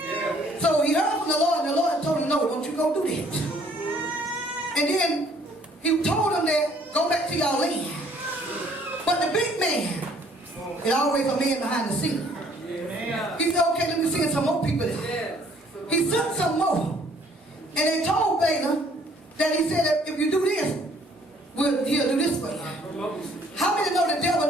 So he heard from the Lord, and the Lord told him, no, don't you go do that. And then he told him that, go back to your land. But the big man is always a man behind the scene. He said, okay, let me send some more people there. He sent some more. And they told Balaam that he said that if you do this, he'll do this for you. How many know the devil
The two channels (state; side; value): normal; both; correlation 0.61